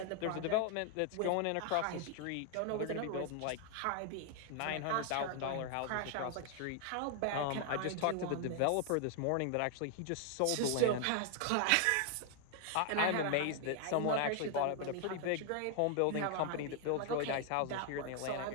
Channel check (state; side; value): different; both; correlation 0.00